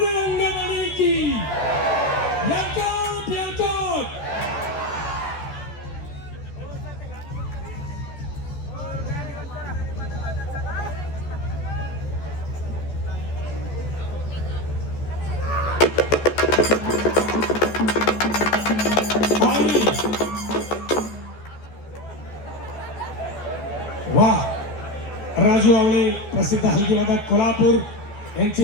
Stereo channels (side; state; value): right; late; 14 ms